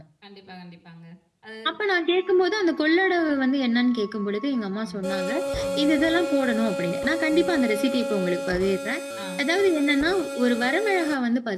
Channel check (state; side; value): identical; both; correlation 1.00